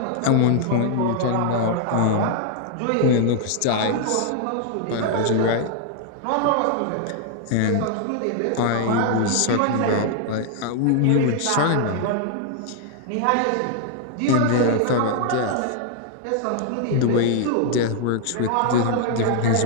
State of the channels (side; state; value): both; different; correlation 0.00